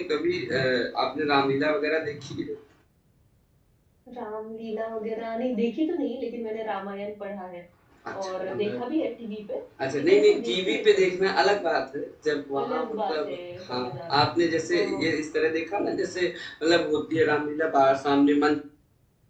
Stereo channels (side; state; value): both; identical; correlation 1.00